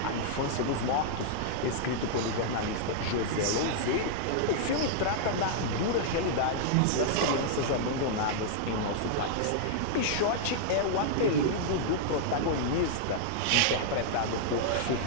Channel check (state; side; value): different; both; correlation -0.01